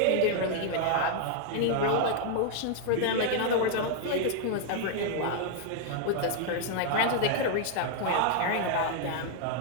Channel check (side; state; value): both; different; correlation 0.00